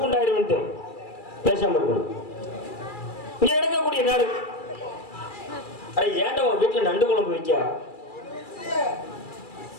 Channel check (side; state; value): right; late; 2.3 ms